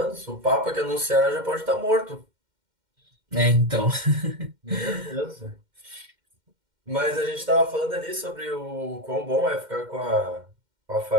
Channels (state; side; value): late; left; 2.1 ms